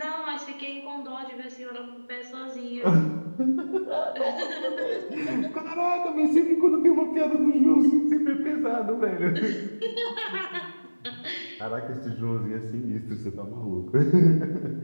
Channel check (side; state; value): both; inverted; correlation -1.00